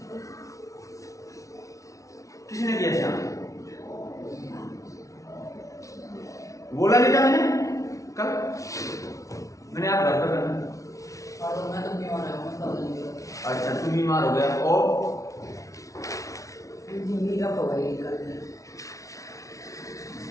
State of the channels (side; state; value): right; late; 0.16 ms